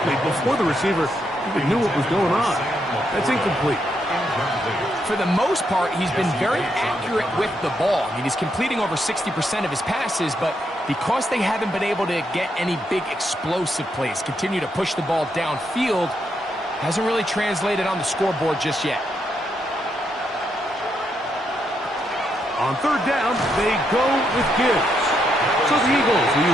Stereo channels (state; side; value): normal; both; correlation 0.79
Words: before the receiver even knew what was going on. That's incomplete. For the most part, he's been very accurate with the ball. I mean, he's completing over 60% of his passes, but because they haven't been able to get any big explosive plays, continue to push the ball downfield, hasn't really translated on the scoreboard just yet. On 3rd down, they go with Gibbs. So the Eagles will